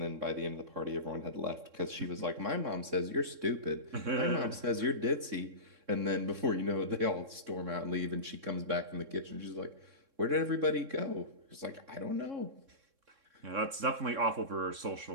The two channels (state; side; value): late; left; 3.6 ms